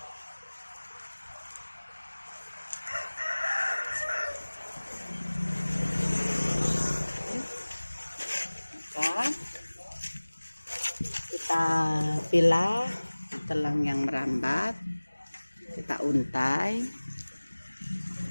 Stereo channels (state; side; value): inverted; both; correlation -1.00